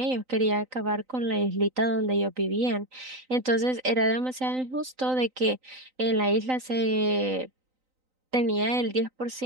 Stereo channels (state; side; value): late; left; 3.9 ms